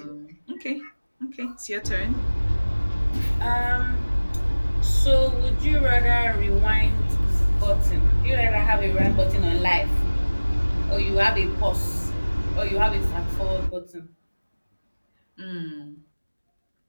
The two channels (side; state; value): both; inverted; correlation -1.00